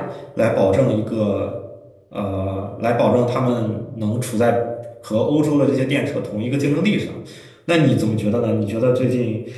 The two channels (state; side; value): identical; both; correlation 1.00